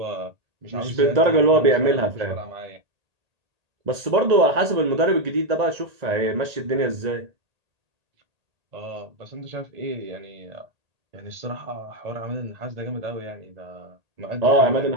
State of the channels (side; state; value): left; late; 1.8 ms